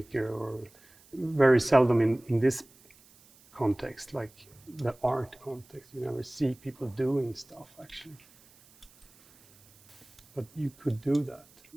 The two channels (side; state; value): right; noise; hiss, 28 dB below the sound